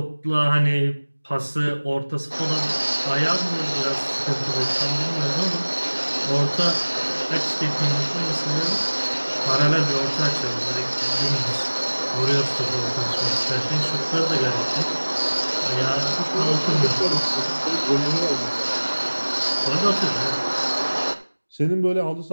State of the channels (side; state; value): both; inverted; correlation -1.00